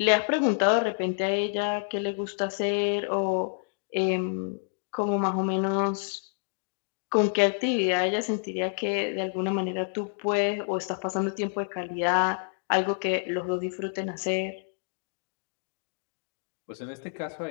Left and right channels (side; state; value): right; silent; digital silence